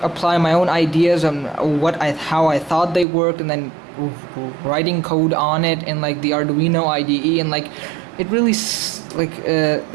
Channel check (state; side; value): drops out; left; at 3.1 s